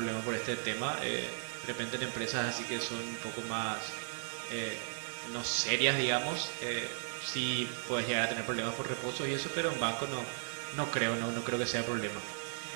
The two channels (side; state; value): left; silent; digital silence